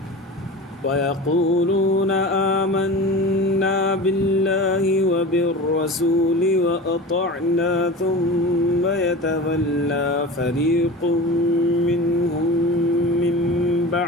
ويقولون آمنا بالله وبالرسول وأطعنا ثم يتولى فريق منهم من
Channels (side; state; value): both; normal; correlation 0.32